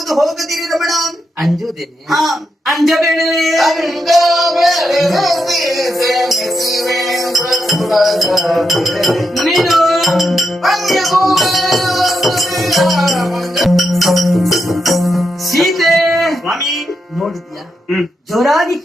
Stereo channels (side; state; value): both; normal; correlation 0.84